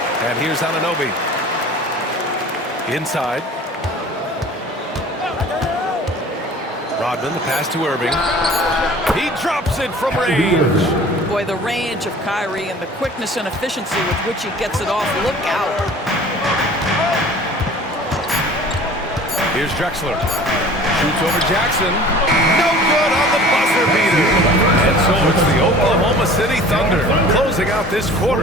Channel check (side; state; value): both; normal; correlation 0.45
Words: And here's Anunoby. Inside. Rodman, the pass to Irving. He drops it from range. Boy, the range of Kyrie and the quickness and efficiency with which he gets it off. Look out. Here's Drexler. Shoots over Jackson. No good on the buzzer beater. And so it's the Oklahoma City Thunder closing out this quarter